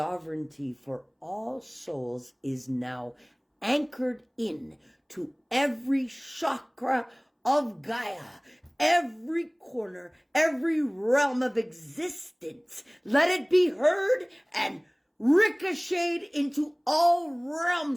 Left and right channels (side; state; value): both; identical; correlation 1.00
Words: for all souls is now anchored in to every chakra of Gaia, every corner, every realm of existence. Let it be heard and ricocheted into all